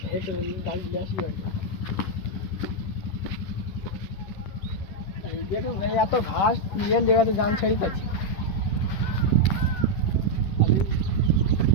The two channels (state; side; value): late; right; 11 ms